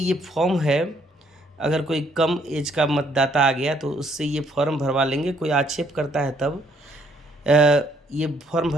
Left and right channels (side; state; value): both; normal; correlation 0.67